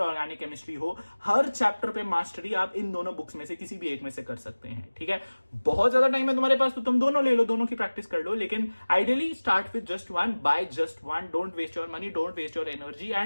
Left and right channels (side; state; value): both; inverted; correlation -1.00